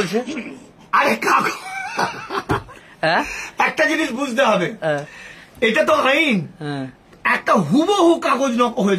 আরে কাগজ, একটা জিনিস বুঝতে হবে, এটা তো আইন। একটা হুবহু কাগজ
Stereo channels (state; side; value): identical; both; correlation 1.00